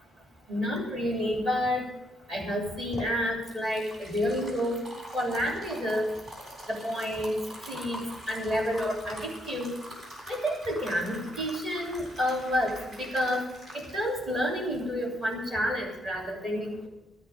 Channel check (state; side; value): normal; both; correlation 0.73